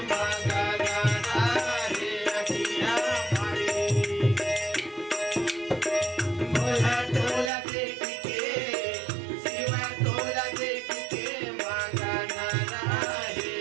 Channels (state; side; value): drops out; left; at 7.5 s